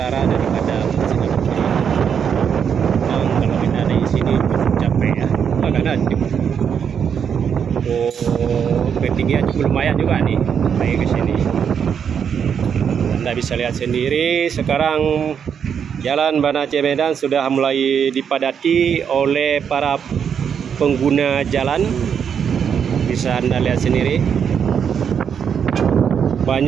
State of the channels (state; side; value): quieter; left; 7.5 dB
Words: daripada Masjid Abu. Dan kalau kita ada di sini cukup capek ya, karena ketinggian cukup lumayan juga nih naik ke sini. Anda bisa lihat sendiri sekarang Jalan Banda Aceh Medan sudah mulai dipadati oleh para pengguna jalan. Bisa Anda lihat sendiri,